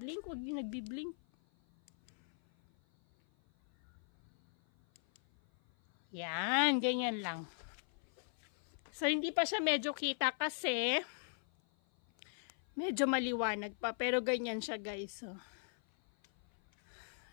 Huwag yung nagbiblink. Yan. Ganyan lang. So, hindi pa siya medyo kita kasi medyo maliwanag pa. Pero ganyan siya guys. Oh.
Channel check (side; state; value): right; silent; 52 dB below the other